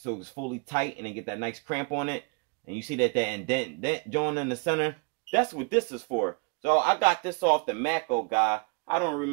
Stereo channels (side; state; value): left; quieter; 32.2 dB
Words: it's fully tight and then get that nice cramp on it, and you see that indent joint in the center, that's what this is for. So I got this off the Mako guy. I don't